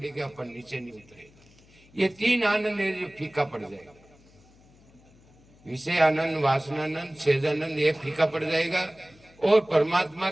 अपन नीचे नहीं उतरेगा। ये 3 आनंद है जो फीका पड़ जाएगा। विषय आनंद, वासनानंद, सेजानंद ये फीका पड़ जाएगा और परमात्मा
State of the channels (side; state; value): left; noise; hum, 28 dB below the sound